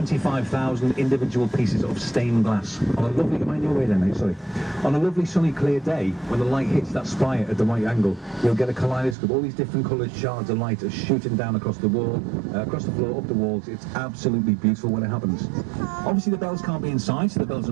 individual pieces of stained glass. On a lovely, am I in your way there, mate? Sorry. On a lovely sunny clear day, when the light hits that spire at the right angle, you'll get a kaleidoscope. All these different coloured shards of light are shooting down across the wall, across the floor, up the walls. It's absolutely beautiful when it happens. Obviously the bells can't be inside, so the bells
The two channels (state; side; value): drops out; left; at 9.2 s